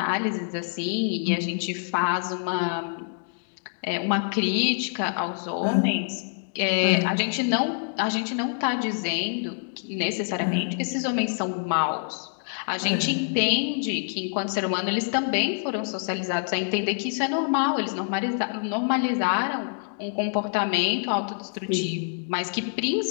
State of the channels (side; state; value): right; silent; digital silence